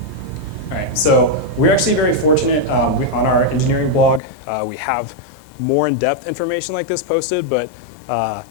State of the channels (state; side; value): drops out; right; at 4.2 s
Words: All right, so we're actually very fortunate. On our engineering blog, we have more in-depth information like this posted, but